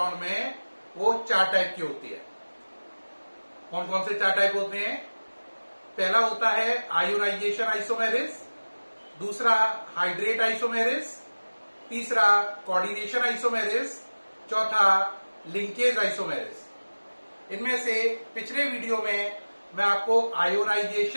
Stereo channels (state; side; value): inverted; both; correlation -1.00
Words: में, वो 4 टाइप की होती है। कौन कौन से 4 टाइप होते हैं? पहला होता है आयोनाइजेशन आइसोमेरिज, दूसरा हाइड्रेट आइसोमेरिज, तीसरा कोऑर्डिनेशन आइसोमेरिज, चौथा लिंकेज आइसोमेरिज। इनमें से पिछले वीडियो में मैं आपको